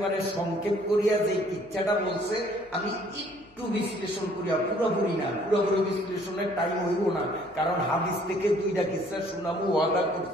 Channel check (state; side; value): noise; left; hum, 29 dB below the sound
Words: সংক্ষেপ করিয়া যে কিচ্ছাটা বলছে, আমি একটু বিশ্লেষণ করিয়া, পুরোপুরি না, পুরোপুরি বিশ্লেষণের টাইম হইব না, কারণ হাদিস থেকে দুইটা কিচ্ছা শোনাবো ওয়াদা